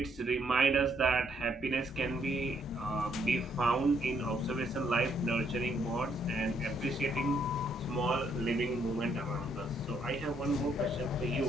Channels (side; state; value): both; normal; correlation 0.71